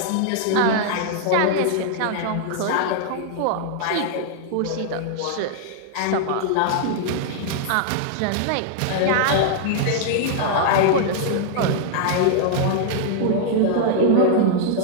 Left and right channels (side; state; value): both; different; correlation -0.01